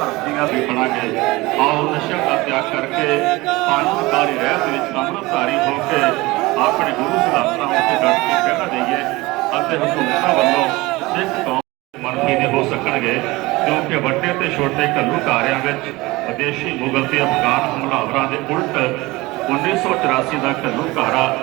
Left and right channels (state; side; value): quieter; left; 21.3 dB